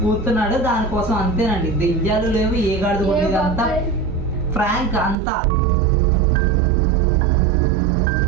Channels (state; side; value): drops out; left; at 5.2 s